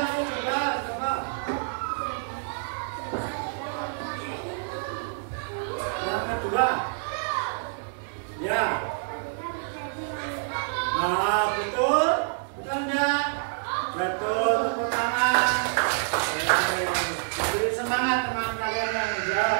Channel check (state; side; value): silent; left; digital silence